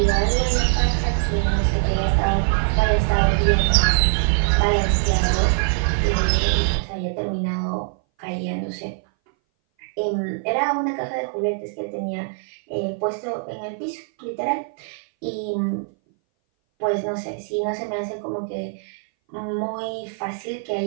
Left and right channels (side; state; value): left; silent; 60 dB below the other